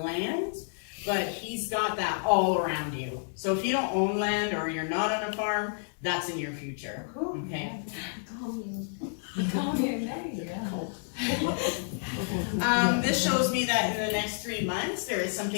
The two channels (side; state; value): right; silent; digital silence